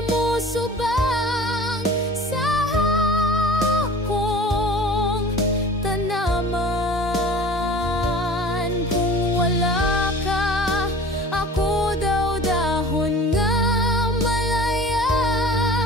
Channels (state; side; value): normal; both; correlation 0.42